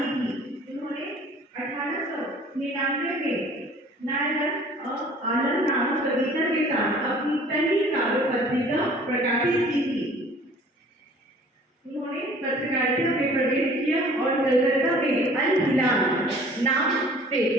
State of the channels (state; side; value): normal; both; correlation 0.51